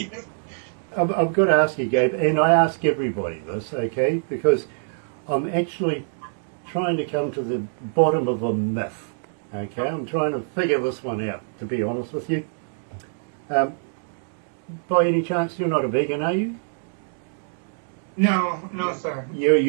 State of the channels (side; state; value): left; silent; digital silence